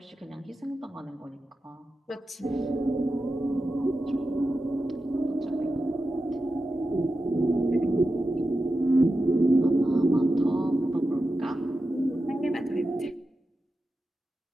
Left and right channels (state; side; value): normal; both; correlation 0.92